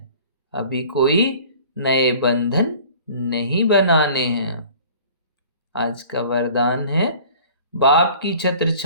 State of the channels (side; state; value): both; inverted; correlation -0.47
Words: अभी कोई नए बंधन नहीं बनाने हैं। आज का वरदान है, बाप की छत्र